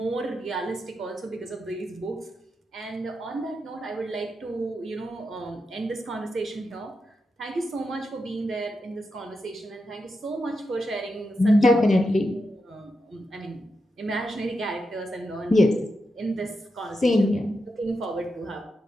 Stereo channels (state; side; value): normal; both; correlation 0.86